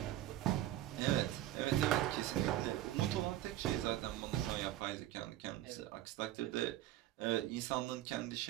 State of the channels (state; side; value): quieter; left; 13.7 dB